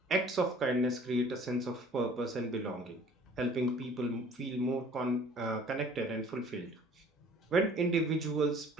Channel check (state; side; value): normal; both; correlation 0.51